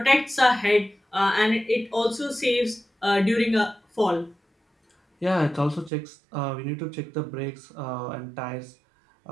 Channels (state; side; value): drops out; left; at 5.9 s